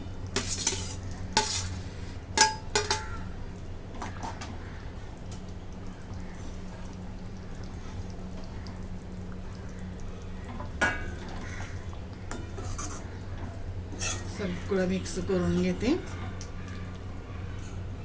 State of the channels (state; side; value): identical; both; correlation 1.00